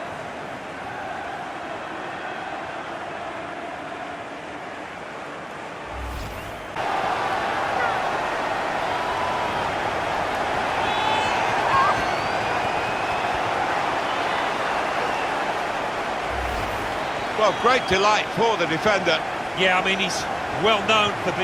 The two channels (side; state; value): both; identical; correlation 1.00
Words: Well, great delight for the defender. Yeah, I mean, he's well known for